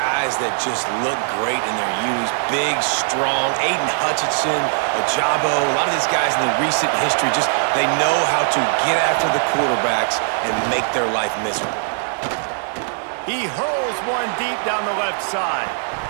that just look great in their youth. Big, strong, Aiden Hutchinson, Ajabo, a lot of these guys in the recent history, just they know how to get after the quarterbacks and make their life miserable. He hurls one deep down the left side.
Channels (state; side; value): silent; left; digital silence